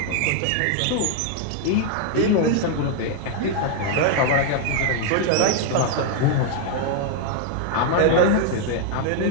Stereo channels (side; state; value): both; different; correlation 0.00